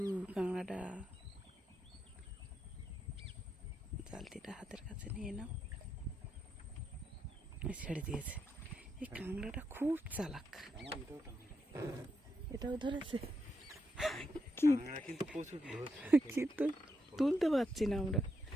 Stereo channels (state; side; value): normal; both; correlation 0.82